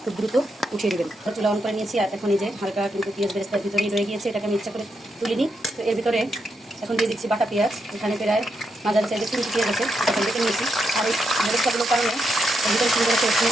খুব দ্রুত উঠিয়ে দেবেন। চুলা অন করে নিয়েছি। আর এখন এই যে হালকা কিন্তু পেঁয়াজ বেরেস্তার ভিতরেই রয়ে গিয়েছে, এটাকে আমি ইচ্ছা করে তুলিনি। তো এর ভিতরে এখন দিয়ে দিচ্ছি বাটা পেঁয়াজ। এখানে প্রায় মাঝারি সাইজের 3টি পেঁয়াজ আছে, এখন দেখে নিয়েছি। আর এই বেরেস্তাগুলোর কারণে ভিতরে সুন্দর করে স্মেল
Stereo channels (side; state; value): both; normal; correlation 0.82